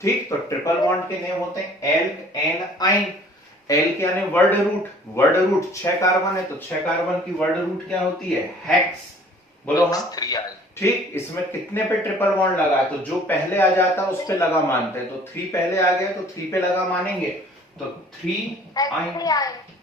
ठीक, तो ट्रिपल बॉन्ड के नेम होते हैं एल्क, एन, आइन। एल्क यानी word root, word root 6 carbon है, तो 6 कार्बन की वर्ड रूट क्या होती है, हेक्स। बोलो हाँ, ठीक। इसमें कितने पे ट्रिपल बॉन्ड लगा है, तो जो पहले आ जाता है उस पे लगा मानते हैं, तो 3 पहले आ गया तो 3 पे लगा मानेंगे, तो 3 आइन,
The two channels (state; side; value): normal; both; correlation 0.53